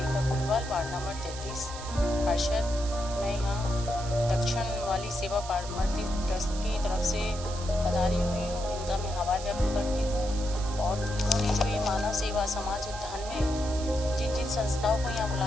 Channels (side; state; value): right; noise; hiss, 12 dB below the sound